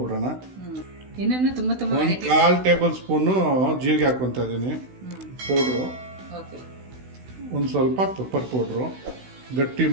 ಒಂದು 1/4 ಟೇಬಲ್ ಸ್ಪೂನು ಜೀರಿಗೆ ಹಾಕೊತಾ ಇದ್ದೀನಿ ಪೌಡ್ರು, ಒಂದು ಸ್ವಲ್ಪ ಪೆಪ್ಪರ್ ಪೌಡ್ರು, ಗಟ್ಟಿ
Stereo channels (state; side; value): late; left; 16 ms